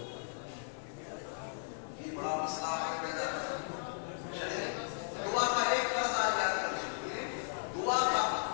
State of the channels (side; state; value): right; silent; digital silence